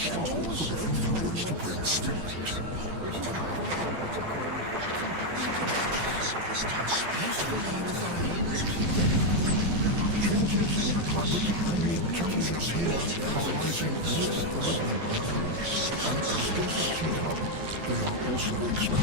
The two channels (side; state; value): left; late; 12 ms